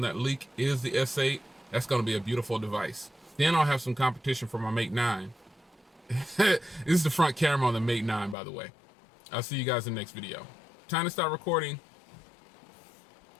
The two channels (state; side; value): drops out; right; at 8.3 s